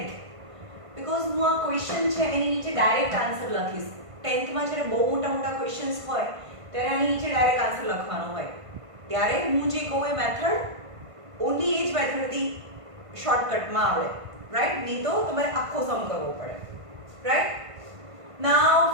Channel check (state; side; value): late; left; 1.5 ms